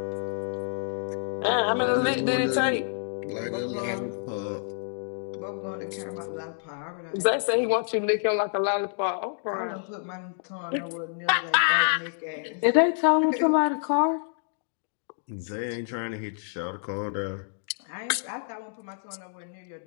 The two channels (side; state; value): right; silent; digital silence